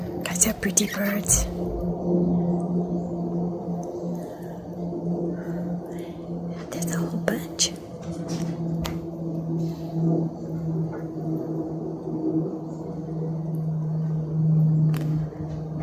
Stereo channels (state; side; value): identical; both; correlation 1.00